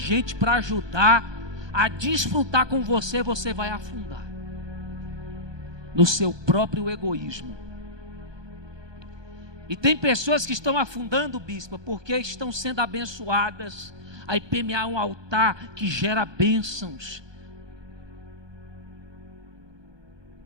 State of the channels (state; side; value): late; left; 1.2 ms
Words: para ajudar a desfrutar com você, você vai afundar no seu próprio egoísmo. E tem pessoas que estão afundando, bispa, porque estão sendo abençoadas. A IPMA é um altar que gera bênçãos